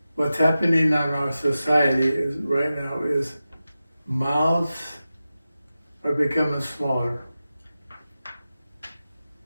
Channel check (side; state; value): both; inverted; correlation -0.93